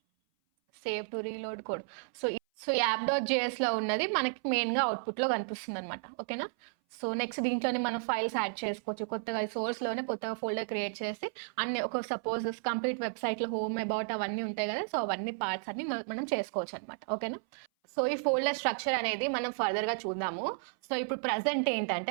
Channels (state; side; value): silent; left; 56 dB below the other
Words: save to reload code. So యాప్.js లో ఉన్నది మనకి మెయిన్గా అవుట్పుట్లో కనిపిస్తుంది అనమాట. ఓకేనా. సో నెక్స్ట్ దీంట్లోనే మనం ఫైల్స్ యాడ్ చేసుకోవచ్చు. కొత్తగా సోర్స్లోనే కొత్తగా ఫోల్డర్ క్రియేట్ చేసి అన్ని ఒక సపోజ్ కంప్లీట్ వెబ్సైట్లో హోమ్ అబౌట్ అవన్నీ ఉంటాయి కదా, సో అవన్నీ పార్ట్స్ అన్ని మనం చేసుకోవచ్చు అనమాట. ఓకేనా. సో ఈ ఫోల్డర్ స్ట్రక్చర్ అనేది మనం ఫర్దర్గా చూద్దాము. సో ఇప్పుడు ప్రజెంట్